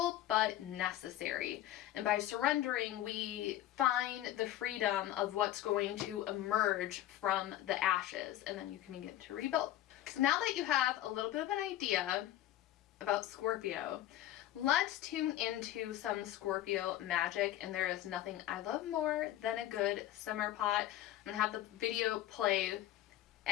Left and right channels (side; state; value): right; quieter; 13.7 dB